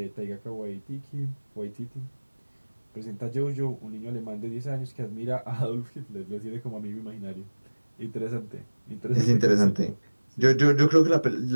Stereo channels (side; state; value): both; inverted; correlation -1.00